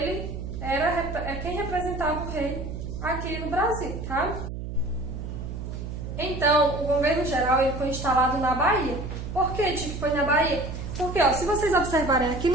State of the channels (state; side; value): noise; right; hum, 7 dB below the sound